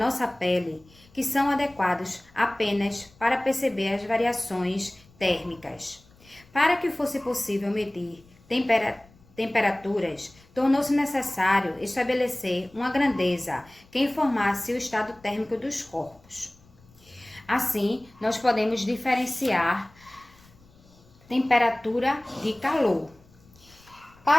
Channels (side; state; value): left; noise; rumble, 28 dB below the sound